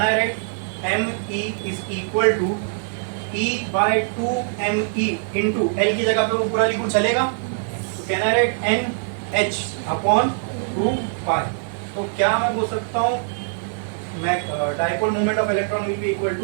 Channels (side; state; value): left; silent; digital silence